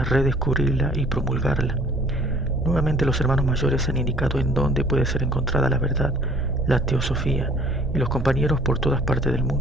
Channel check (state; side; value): normal; both; correlation 0.54